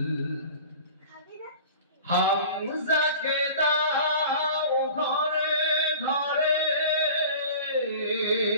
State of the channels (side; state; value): both; inverted; correlation -0.40